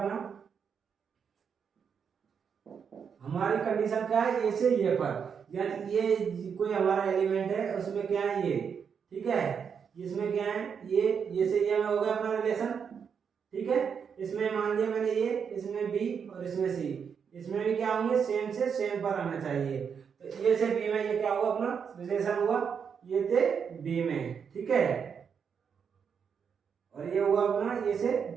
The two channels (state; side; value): quieter; left; 6.8 dB